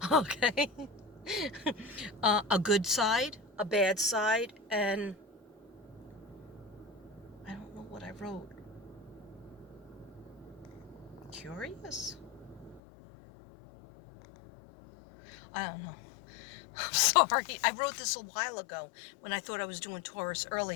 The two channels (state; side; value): drops out; right; at 12.8 s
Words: Okay. A good side, a bad side, and I don't know what I wrote. Curious? I don't know. I'm sorry. I wrote this a while ago when I thought I was doing Taurus